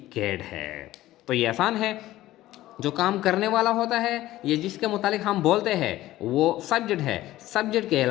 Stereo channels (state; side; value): quieter; right; 15.6 dB